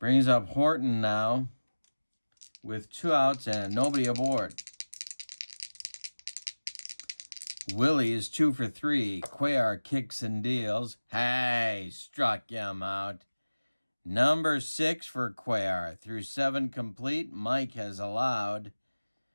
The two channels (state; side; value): inverted; both; correlation -1.00